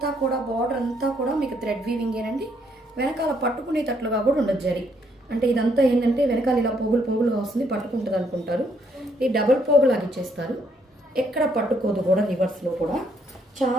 కూడా బార్డర్ అంతా కూడా మీకు థ్రెడ్ వీవింగేనండి. వెనకాల పట్టుకునేటట్లుగా కూడా ఉండదు జరీ. అంటే ఇదంతా ఏంటంటే వెనకాల ఇలా పోగులుగా వస్తుంది, పట్టుకుంటుంది అనుకుంటారు. ఈ డబుల్ పోగులాగా ఇచ్చేస్తారు. ఎక్కడ పట్టుకోదు కూడా, రివర్స్లో కూడా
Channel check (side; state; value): both; normal; correlation 0.71